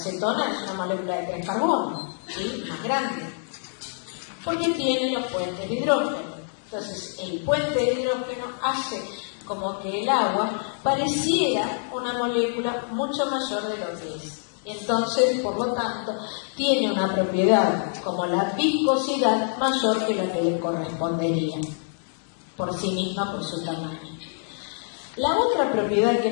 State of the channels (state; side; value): silent; right; digital silence